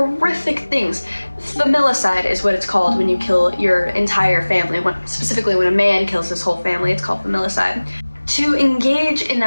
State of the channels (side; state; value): both; inverted; correlation -1.00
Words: things. Familicide is what it's called when you kill your entire family. Specifically when a man kills his whole family, it's called familicide. To engage in